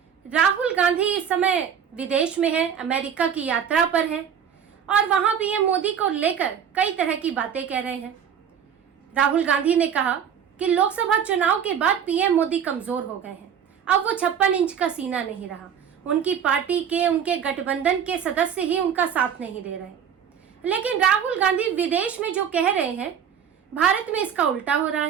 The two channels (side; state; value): left; quieter; 8.1 dB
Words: राहुल गांधी इस समय विदेश में है, अमेरिका की यात्रा पर है और वहां पीएम मोदी को लेकर कई तरह की बातें कह रहे हैं। राहुल गांधी ने कहा कि लोकसभा चुनाव के बाद पीएम मोदी कमजोर हो गए हैं, अब वो 56 इंच का सीना नहीं रहा। उनकी पार्टी के, उनके गठबंधन के सदस्य ही उनका साथ नहीं दे रहे। लेकिन राहुल गांधी विदेश में जो कह रहे हैं, भारत में इसका उल्टा हो रहा